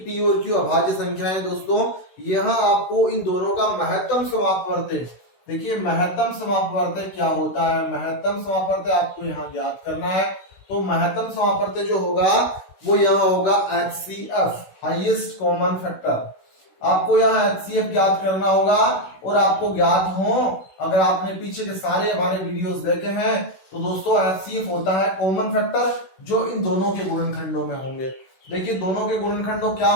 p और q अभाज्य संख्या है। दोस्तों, यहाँ आपको इन दोनों का महत्तम समापवर्तक, देखिए महत्तम समापवर्तक क्या होता है। महत्तम समापवर्तक आपको यहाँ ज्ञात करना है। तो महत्तम समापवर्तक जो होगा वो यहाँ होगा HCF, हाईएस्ट कॉमन फैक्टर। आपको यहाँ HCF ज्ञात करना होगा, और आपको ज्ञात हो, अगर आपने पीछे के सारे हमारे वीडियोस देखे हैं तो दोस्तों HCF होता है कॉमन फैक्टर जो इन दोनों के गुणनखंडों में होंगे। देखिए, दोनों के गुणनखंडों क्या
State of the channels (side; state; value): right; late; 16 ms